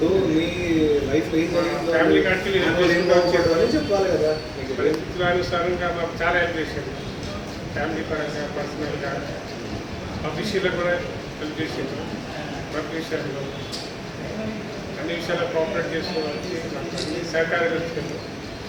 మీ లైఫ్ ఫ్యామిలీ కాడికి చెప్పాలి కదా. పరిస్థితుల అనుసారంగా మాకు చాలా హెల్ప్ చేసింది. ఫ్యామిలీ పరంగా, పర్సనల్గా, ఆఫీషియల్గా కూడా హెల్ప్ చేసింది. వర్క్ విషయాల్లో అన్ని విషయాల్లో కోఆపరేట్ చేసుకోవడానికి అన్ని సహకారం వచ్చింది.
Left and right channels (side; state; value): both; identical; correlation 1.00